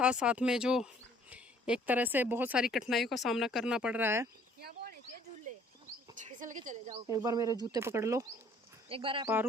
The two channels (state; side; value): normal; both; correlation 0.58